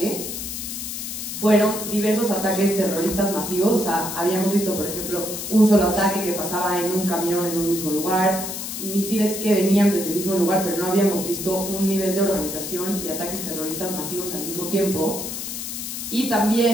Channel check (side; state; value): left; noise; hiss, 6 dB below the sound